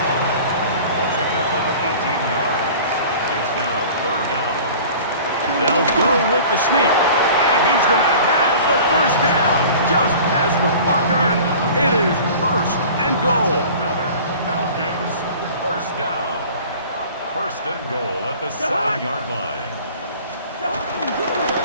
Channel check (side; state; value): both; inverted; correlation -0.43